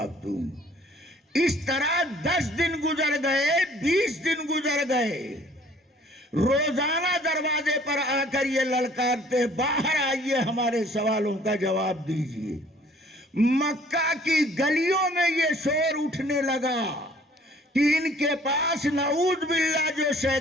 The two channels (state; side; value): normal; both; correlation 0.56